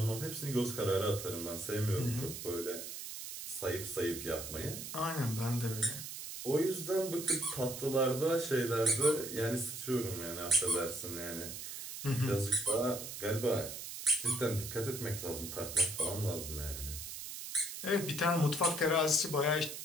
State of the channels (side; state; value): right; noise; hiss, 8 dB below the sound